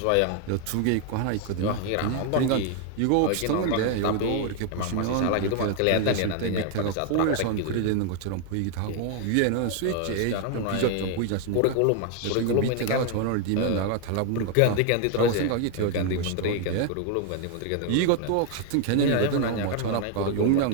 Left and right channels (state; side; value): different; both; correlation 0.00